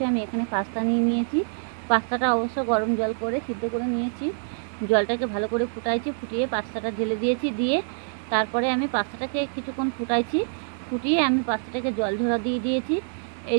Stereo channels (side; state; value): left; silent; digital silence